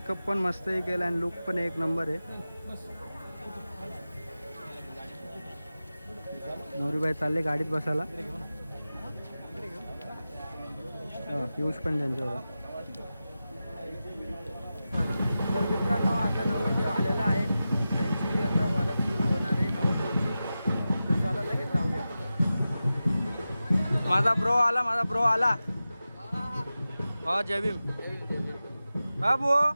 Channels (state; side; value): inverted; both; correlation -0.94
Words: पण मस्तही केला आणि लुक पण एक नंबर आहे. नवरीबाई चालले गाडीत बसायला. पियुष पण त्यांच्यावर. तर मित्रांनो, आता नवरदेव आलेला आहे. त्यांची आता वरात सुरू होणार आहे नवरदेवची. तर चला लगेच जाऊया. माझा ब्रो आला. हो, जय भीम.